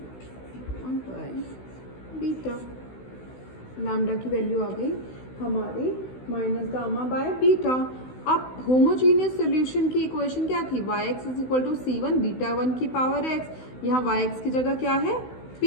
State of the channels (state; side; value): late; right; 16 ms